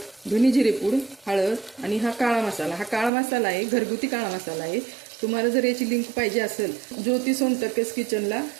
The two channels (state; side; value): drops out; left; at 3.1 s